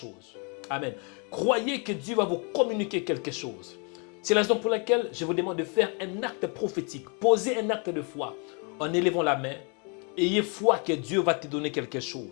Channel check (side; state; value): right; quieter; 35.6 dB